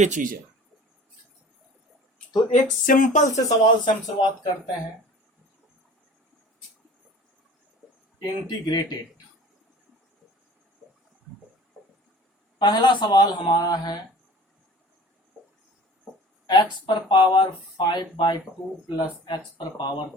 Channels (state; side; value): normal; both; correlation 0.44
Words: चीज है। तो एक सिंपल से सवाल से हम शुरुआत करते हैं। इंटीग्रेटेड, पहला सवाल हमारा है x पर पावर 5/2 प्लस x पर पावर